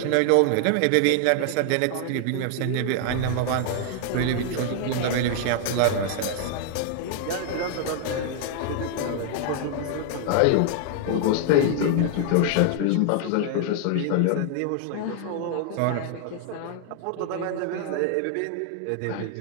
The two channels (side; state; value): both; different; correlation 0.00